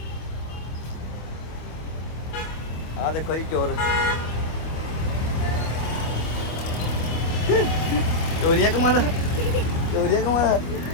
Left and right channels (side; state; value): right; late; 25 ms